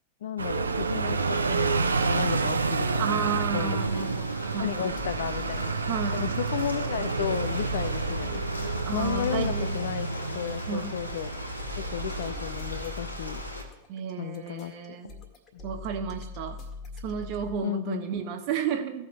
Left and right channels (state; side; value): inverted; both; correlation -0.52